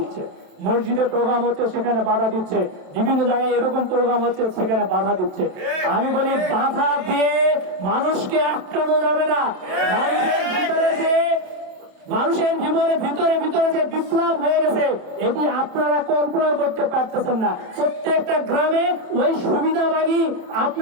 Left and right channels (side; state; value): left; late; 28 ms